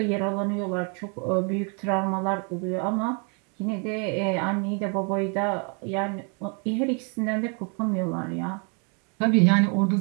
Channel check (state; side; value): quieter; left; 37.1 dB